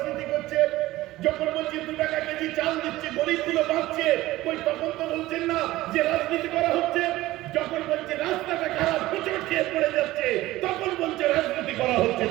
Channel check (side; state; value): left; quieter; 17.2 dB